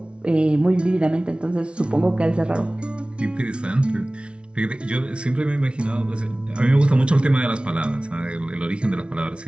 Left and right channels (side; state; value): left; late; 0.058 ms